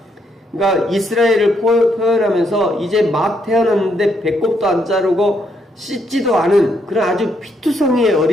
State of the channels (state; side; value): normal; both; correlation 0.75